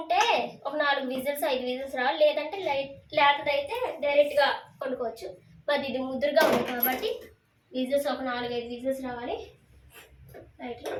ఒక 4 విజిల్స్ 5 విజిల్స్ రావాలి. లేదంటే లేతదైతే డైరెక్ట్గా వండుకోవచ్చు. మరి ఇది ముద్దురుగా ఉంది కాబట్టి విజిల్స్ ఒక 4-5 విజిల్స్ రావాలి. రైట్,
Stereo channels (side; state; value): both; identical; correlation 1.00